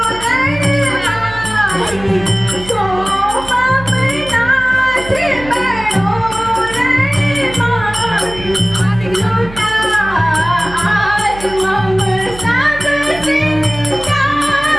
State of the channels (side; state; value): right; noise; hum, 14 dB below the sound